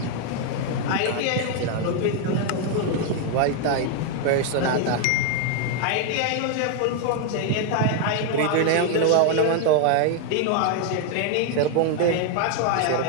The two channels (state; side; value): different; both; correlation 0.00